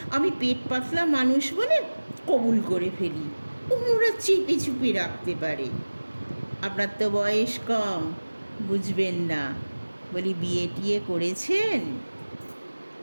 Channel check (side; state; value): both; inverted; correlation -1.00